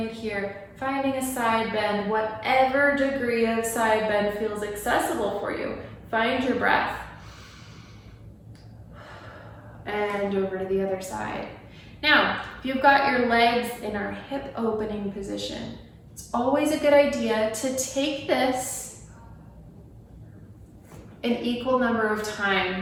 here, finding a side bend, whatever degree of side bend feels accessible for you. Find your breath. And over to the other side. Now, if you've got your legs in our hip opening position, it's always a good idea to take this an equal number of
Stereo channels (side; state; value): both; identical; correlation 1.00